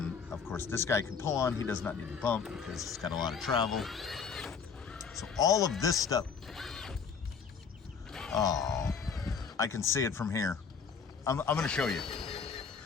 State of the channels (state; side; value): quieter; right; 6.1 dB